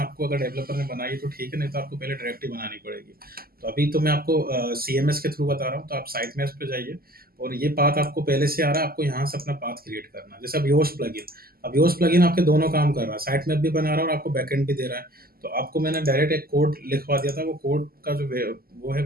अगर डेवलपर ने बनाई तो ठीक है, नहीं तो आपको पहले डायरेक्टरी बनानी पड़ेगी। तो अभी तो मैं आपको सीएमएस के थ्रू बता रहा हूँ। तो आप साइट मैप्स पे जाइए, और ये पाथ आपको पहले से आ रहा है, आपको यहाँ से अपना पाथ क्रिएट करना है। जैसे अब योस्ट प्लगइन, अब योस्ट प्लगइन आपके दोनों काम कर रहा है, साइट मैप भी बना रहा है और आपको बैकएंड भी दे रहा है। तो आपको मैंने डायरेक्ट एक कोड लिखवा दिया था, वो कोड का जो वो है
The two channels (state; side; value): late; left; 0.43 ms